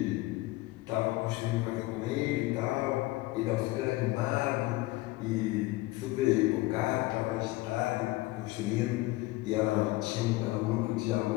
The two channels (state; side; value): quieter; right; 19.6 dB